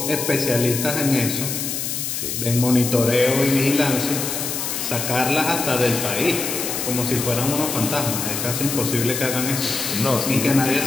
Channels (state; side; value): noise; left; hiss, 3 dB below the sound